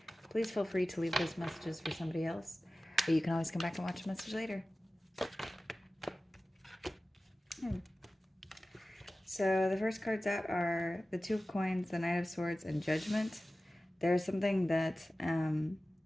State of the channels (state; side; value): normal; both; correlation 0.96